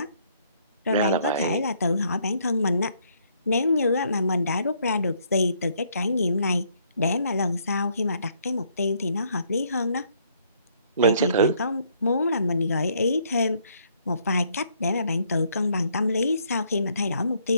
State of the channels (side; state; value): both; inverted; correlation -0.68